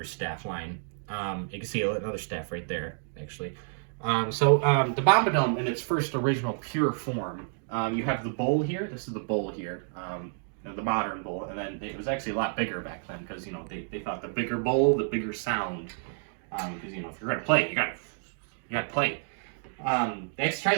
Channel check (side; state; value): left; silent; digital silence